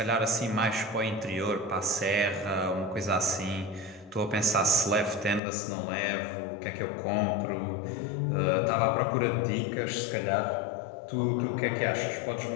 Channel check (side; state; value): right; drops out; at 5.4 s